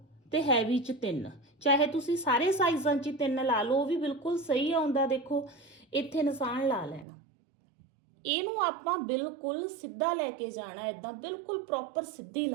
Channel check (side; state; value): left; drops out; at 7.1 s